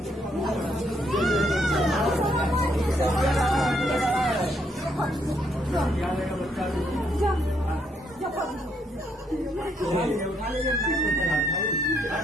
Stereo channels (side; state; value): both; normal; correlation 0.73